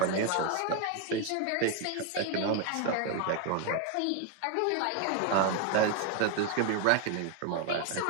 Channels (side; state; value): both; different; correlation 0.01